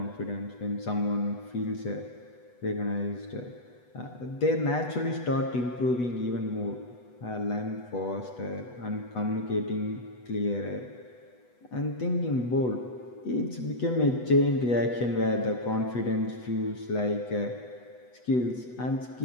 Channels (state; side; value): late; right; 8.1 ms